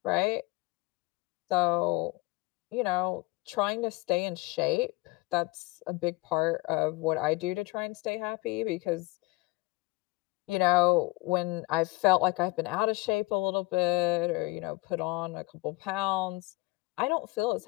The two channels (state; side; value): quieter; right; 22.6 dB